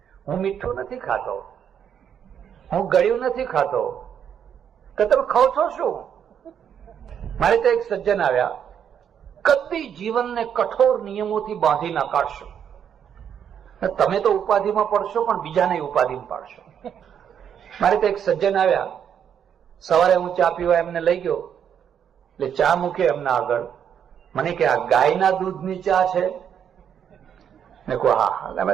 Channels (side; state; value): left; quieter; 8.5 dB